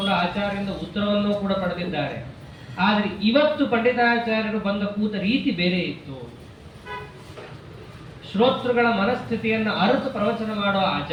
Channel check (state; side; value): identical; both; correlation 1.00